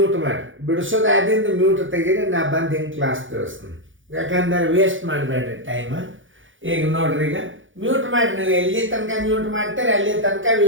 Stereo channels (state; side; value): late; left; 0.57 ms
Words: ಮಾಡ್ರಿ, ಬಿಡಿಸೋದು ಆದಿಂದ ಮ್ಯೂಟ್ ತೆಗೀರಿ. ನಾ ಬಂದು ಹಿಂಗೆ ಕ್ಲಾಸ್ ತಿಳಿಸ್ತೀನಿ. ಯಾಕಂದ್ರೆ ವೇಸ್ಟ್ ಮಾಡಬೇಡ್ರಿ ಟೈಮ್. ಈಗ ನೋಡ್ರಿ, ಈಗ ಮ್ಯೂಟ್ ಮಾಡಿ, ನೀವು ಎಲ್ಲಿ ತನಕ ಮ್ಯೂಟ್ ಮಾಡ್ತಾರೆ ಅಲ್ಲಿ ತನಕ